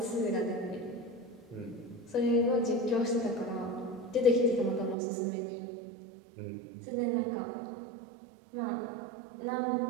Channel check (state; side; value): drops out; left; at 5.0 s